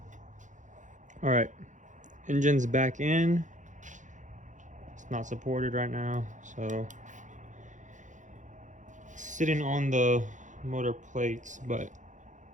All right, engine's back in. It's not supported right now, so it's sitting on the motor plates, but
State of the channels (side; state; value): left; late; 0.36 ms